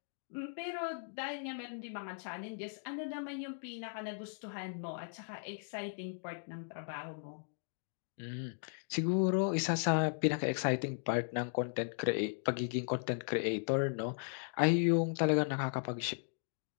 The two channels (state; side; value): silent; right; digital silence